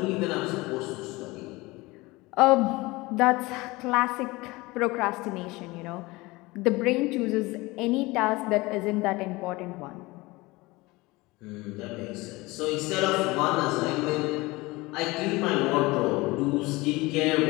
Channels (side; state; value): right; quieter; 22.1 dB